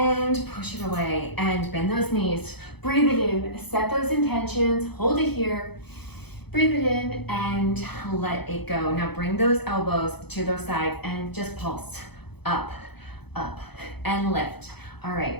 push it away and bend those knees. Breathe it in, set those intentions, hold it here. Breathe it in and let it go. Now bring those elbows to those sides and just pulse up, up, and lift. All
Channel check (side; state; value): right; late; 0.98 ms